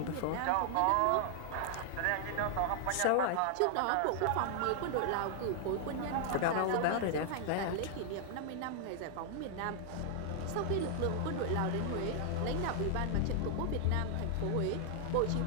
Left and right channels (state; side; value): different; both; correlation 0.00